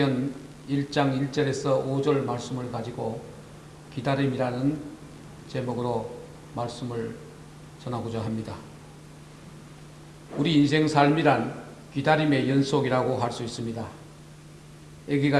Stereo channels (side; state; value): both; identical; correlation 1.00